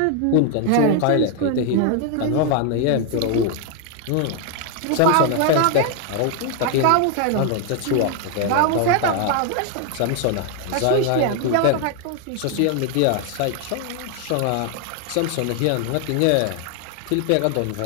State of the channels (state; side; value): different; both; correlation 0.00